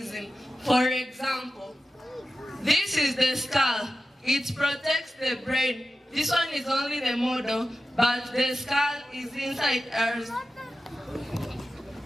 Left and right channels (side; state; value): both; normal; correlation 0.93